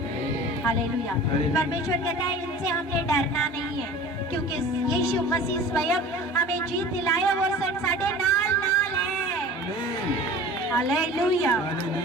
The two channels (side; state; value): both; normal; correlation 0.40